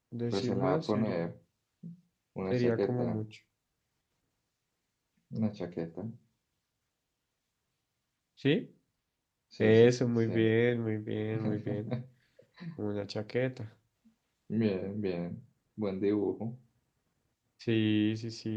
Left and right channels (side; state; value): both; identical; correlation 1.00